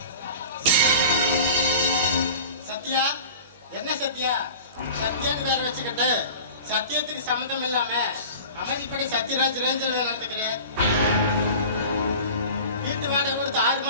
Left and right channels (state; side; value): inverted; both; correlation -0.39